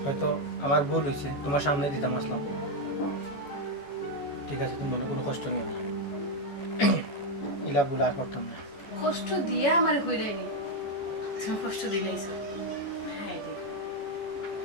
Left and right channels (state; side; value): late; right; 14 ms